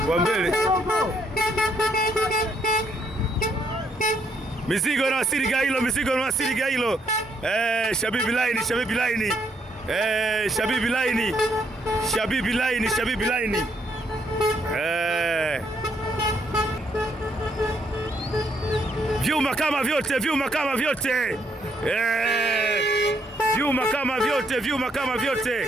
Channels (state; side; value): normal; both; correlation 0.72